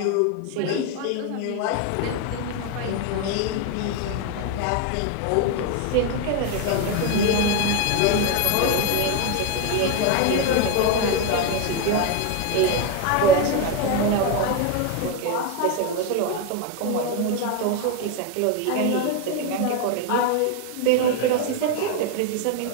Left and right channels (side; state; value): both; different; correlation 0.02